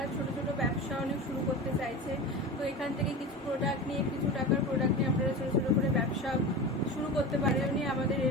ছোট ছোট ব্যবসা অনেক শুরু করতে চাইছেন, তো এখান থেকে কিছু প্রোডাক্ট নিয়ে, কিছু টাকার প্রোডাক্ট নিয়ে আপনারা ছোট ছোট করে ব্যবসা শুরু করতে পারেন। আমাদের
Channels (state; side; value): normal; both; correlation 0.29